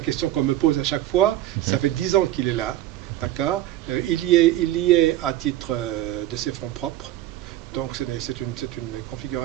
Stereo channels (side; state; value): left; quieter; 14.0 dB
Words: qu'on me pose à chaque fois. Ça fait 10 ans qu'il est là, d'accord. Il y est à titre de ses fonds propres. Donc c'est une